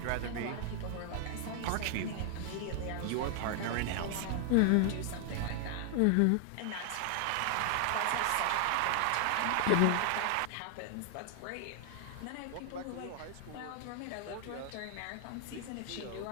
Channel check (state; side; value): different; both; correlation 0.00